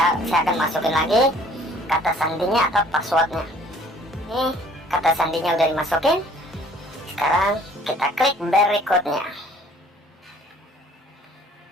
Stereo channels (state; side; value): normal; both; correlation 0.56